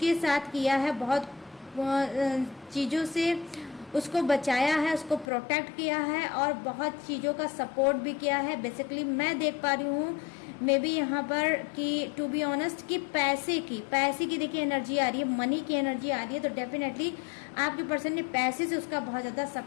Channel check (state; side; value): drops out; right; at 5.2 s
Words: साथ किया है, बहुत चीज़ों से उसको बचाया है, उसको प्रोटेक्ट किया है और बहुत चीज़ों का सपोर्ट भी किया है। बेसिकली मैं देख पा रही हूँ मे बी यहाँ पर कि टू बी ऑनेस्ट कि पैसे की देखिए एनर्जी आ रही है, मनी की एनर्जी आ रही है। तो डेफिनेटली आपके पर्सन ने पैसे से उसका बहुत ज़्यादा